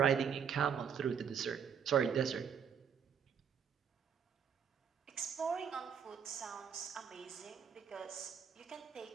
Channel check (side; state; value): left; quieter; 7.4 dB